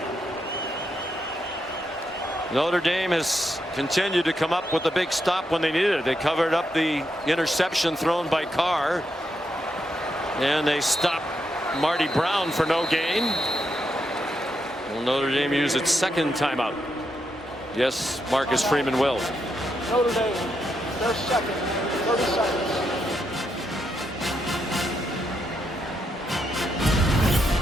Notre Dame has continued to come up with a big stop when they needed it. They covered up the interception thrown by Carr, and they stopped Marty Brown for no gain. Will Notre Dame use its second timeout? Yes, Marcus Freeman will. Notre Dame, their second, 30 seconds.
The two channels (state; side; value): normal; both; correlation 0.81